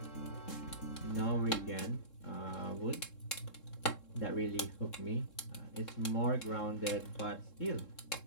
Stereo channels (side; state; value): right; late; 3.7 ms